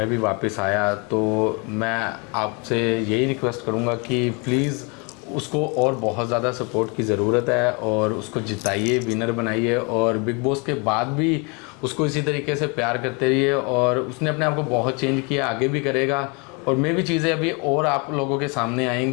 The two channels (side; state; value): right; quieter; 31.8 dB